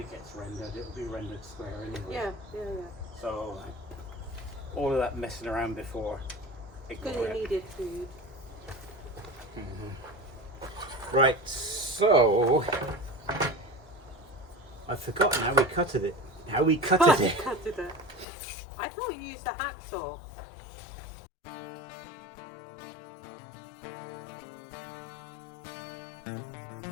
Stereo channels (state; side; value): drops out; right; at 18.2 s